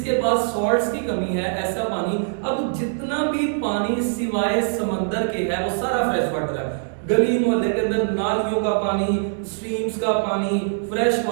पास सॉल्ट्स की कमी है ऐसा पानी। अब जितना भी पानी सिवाय समंदर के है वो सारा फ्रेश वाटर है। गली मोहल्ले के अंदर नालियों का पानी, स्ट्रीम्स का पानी फ्रेश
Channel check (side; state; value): left; silent; 64 dB below the other